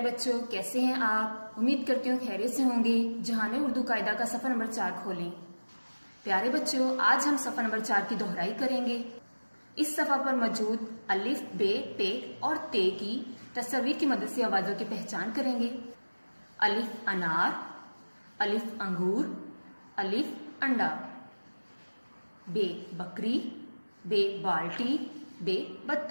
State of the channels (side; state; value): both; inverted; correlation -1.00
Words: बच्चों, कैसे हैं आप। उम्मीद करती हूँ खैरियत से होंगे। जहाने उर्दू कायदा का सफ़र नंबर 4 खोलें। प्यारे बच्चों, आज हम सफ़र नंबर 4 की दोहराई करेंगे। इस सफ़ा पर मौजूद अलिफ, बे, पे और ते की तस्वीर की मदद से आवाज़ों की पहचान करेंगे। अलिफ अनार, अलिफ अंगूर, अलिफ अंडा। बे बकरी, बे बाल्टी, बे